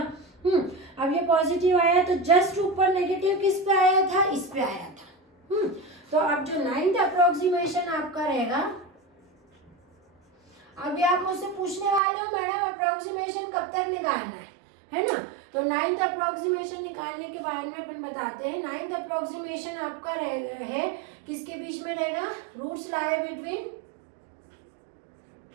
अब ये पॉजिटिव आया तो जस्ट ऊपर नेगेटिव किस पे आया था? इस पे आया था। तो अब जो 9th अप्रोक्सीमेशन आपका रहेगा, अभी आप मुझसे पूछने वाले हो मैडम अप्रोक्सीमेशन कब तक निकालना है ना। तो 9th अप्रोक्सीमेशन निकालने के बारे में अपन बताते हैं। 9th अप्रोक्सीमेशन आपका है किसके बीच में रहेगा? रूट्स लाई बिटवीन,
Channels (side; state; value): left; drops out; at 12.0 s